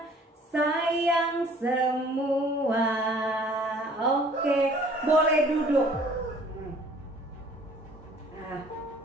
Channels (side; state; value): both; normal; correlation 0.54